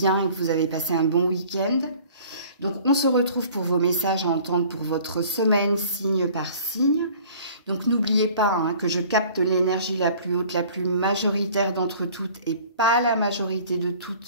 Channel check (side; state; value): both; inverted; correlation -0.50